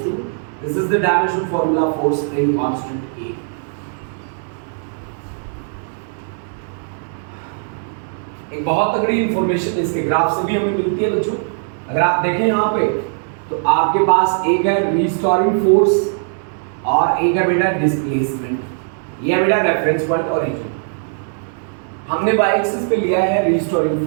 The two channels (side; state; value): left; silent; digital silence